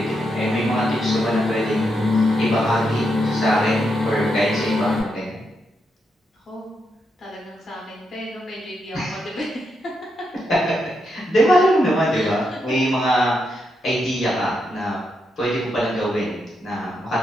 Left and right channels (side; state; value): both; normal; correlation 0.82